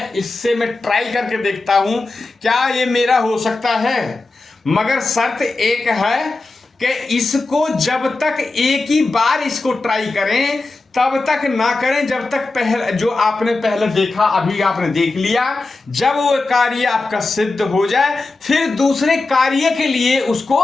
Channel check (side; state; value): right; quieter; 3.4 dB